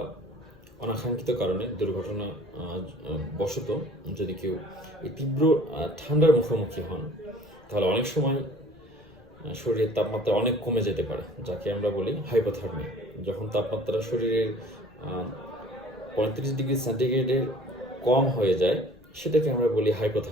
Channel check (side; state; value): left; noise; rumble, 27 dB below the sound